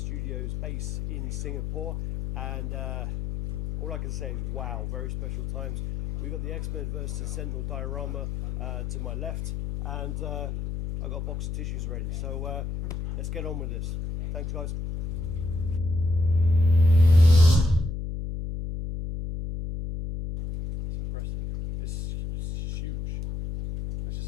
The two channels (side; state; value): left; noise; hum, 4 dB below the sound